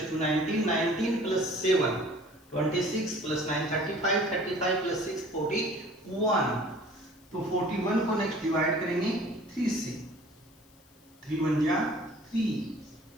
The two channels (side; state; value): left; noise; hiss, 29 dB below the sound